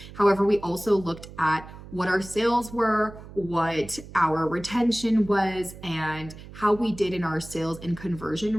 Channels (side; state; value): right; noise; hum, 16 dB below the sound